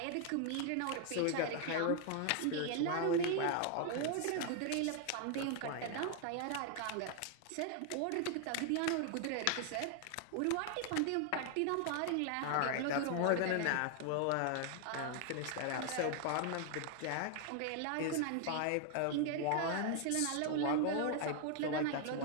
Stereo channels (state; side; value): different; both; correlation 0.00